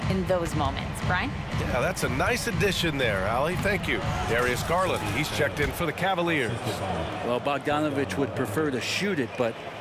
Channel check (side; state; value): both; identical; correlation 1.00